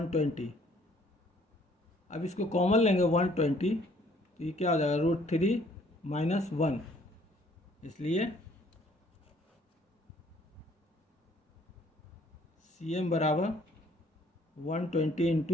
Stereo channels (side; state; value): both; normal; correlation 0.61